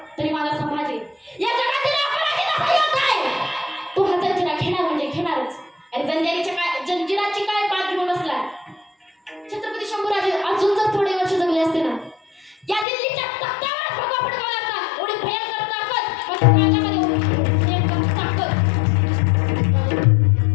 तरी माझा संभाजी या जगातील अपराधीचा योग आहे, तो हा जंजिरा घेणार म्हणजे घेणारच. आणि जंजिराची काय पाठ घेऊन बसला. छत्रपती शंभूराजे अजून जर थोडे वर्ष जगले असते ना, या दिल्लीच्या तख्तावर भगवा फडकावला असता. एवढी भयंकर ताकद माझ्या ताकद.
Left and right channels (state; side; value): drops out; right; at 12.9 s